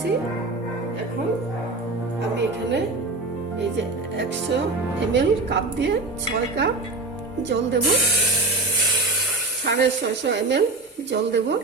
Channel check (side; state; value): left; quieter; 3.3 dB